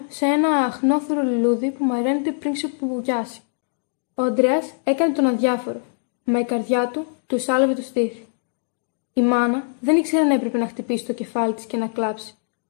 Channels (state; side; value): silent; right; digital silence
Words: σε ένα αχνόθωρο λουλούδι που μαραίνεται πριν ξεπουβουγιάσει. Ο Ανδρέας έκανε τον αδιάφορο, μα η καρδιά του του σάλευε το στήθι. Η μάνα δεν ήξερε αν έπρεπε να χτυπήσει το κεφάλι της και να κλάψει,